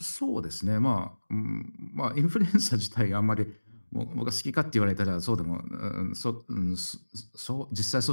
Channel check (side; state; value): both; inverted; correlation -1.00